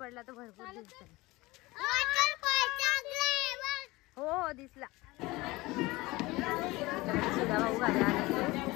तर भरपूर दिसत. हो हो दिसला. सुधा भाऊ घरी आले,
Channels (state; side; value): quieter; right; 21.1 dB